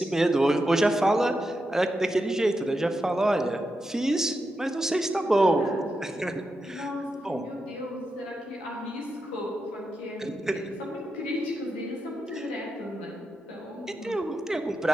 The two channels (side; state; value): both; normal; correlation 0.87